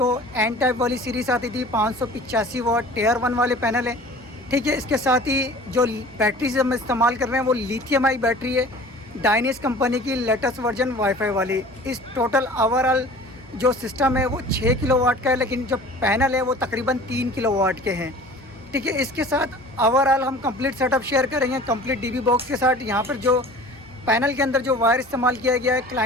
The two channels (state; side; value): normal; both; correlation 0.44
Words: एन टाइप वाली सीरीज़ आती थी, 585 वाट टियर 1 वाले पैनल हैं। ठीक है, इसके साथ ही जो बैटरी हम इस्तेमाल कर रहे हैं वो लिथियम आई बैटरी है, डायनिस कंपनी की लेटेस्ट वर्जन वाईफाई वाली। इस टोटल ओवरऑल जो सिस्टम है वो 6 किलोवाट का है, लेकिन जो पैनल है वो तकरीबन 3 किलोवाट के हैं। ठीक है, इसके साथ ओवरऑल हम कंप्लीट सेटअप शेयर करेंगे कंप्लीट डीबी बॉक्स के साथ। यहाँ पर जो पैनल के अंदर जो वायर इस्तेमाल किया गया है,